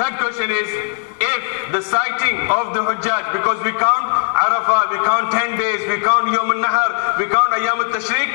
question is, if the sighting of the Hujjaj, because we count Arafah, we count 10 days, we count Yawm al-Nahar, we count Ayyam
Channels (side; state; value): right; silent; digital silence